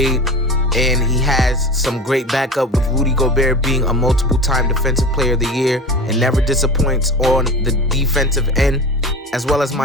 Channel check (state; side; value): normal; both; correlation 0.32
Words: and he has some great backup with Rudy Gobert being a multiple-time Defensive Player of the Year and never disappoints on the defensive end, as well as